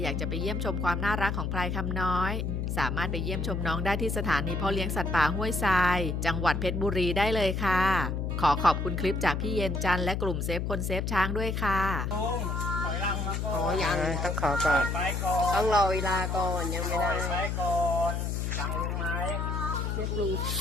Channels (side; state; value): left; noise; hum, 1 dB below the sound